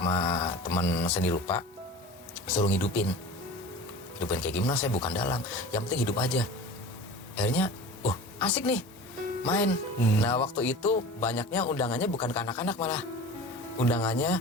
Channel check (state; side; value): normal; both; correlation 0.37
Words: teman seni rupa, suruh hidupin kayak gimana, saya bukan dalang, yang penting hidup aja. Akhirnya asik nih main. Nah waktu itu banyaknya undangannya bukan ke anak-anak, malah undangannya